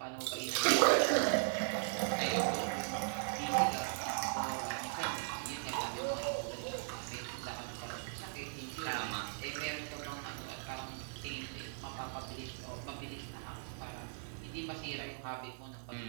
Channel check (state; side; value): silent; left; 52 dB below the other